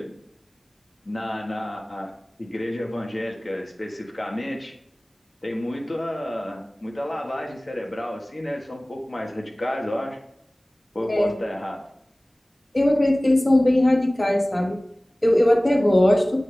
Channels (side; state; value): both; normal; correlation 0.98